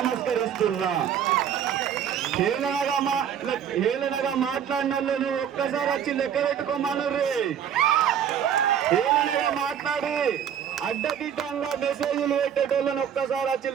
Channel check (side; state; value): left; quieter; 8.8 dB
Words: హేళనగా మాట్లాడిన వాళ్ళు ఒక్కసారి వచ్చి లెక్క పెట్టుకోమనుర్రి. హేళనగా మాట్లాడి అడ్డదిడ్డంగా మెసేజ్లు పెట్టేటోళ్ళని ఒక్కసారి వచ్చి